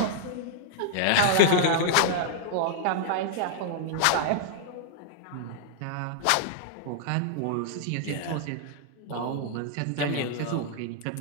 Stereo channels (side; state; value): both; different; correlation -0.01